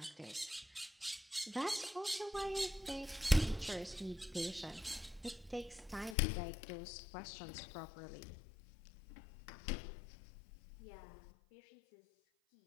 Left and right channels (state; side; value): drops out; right; at 6.2 s